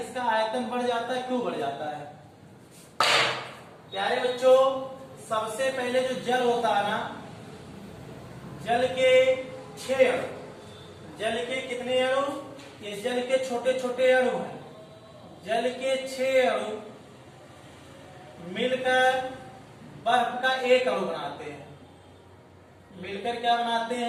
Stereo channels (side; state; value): both; identical; correlation 1.00